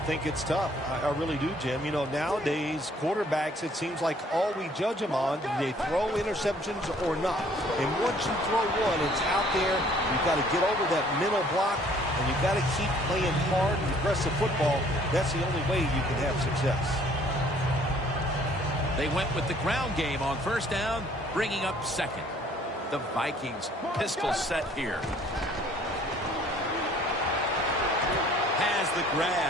it's tough. I really do, Jim. You know, nowadays, quarterbacks, it seems like all we judge them on, do they throw interceptions or not? And once you throw one, it's out there. You've got to get over that mental block, and you've got to keep playing hard and aggressive football. That's the only way you can have success. They went with the ground game on first down, bringing up second. The Vikings pistol set here. Has the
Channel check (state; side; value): normal; both; correlation 0.58